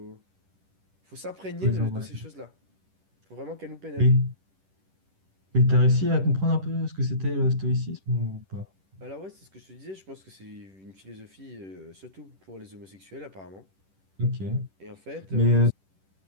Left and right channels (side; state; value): left; late; 10 ms